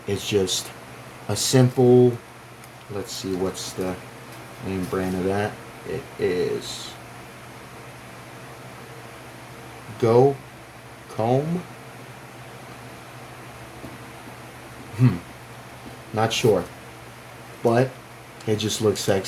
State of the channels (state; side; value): identical; both; correlation 1.00